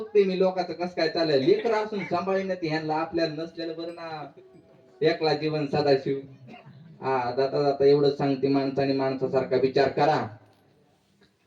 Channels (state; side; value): identical; both; correlation 1.00